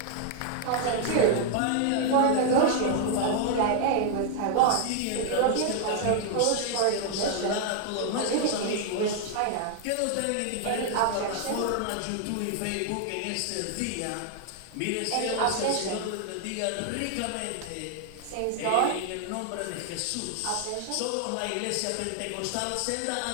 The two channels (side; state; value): both; different; correlation 0.00